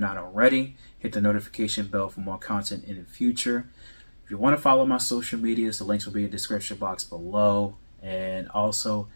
already. Hit the notification bell for more content in the future. If you want to follow my social medias, the links will be in the description box below. And also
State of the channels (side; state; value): both; inverted; correlation -1.00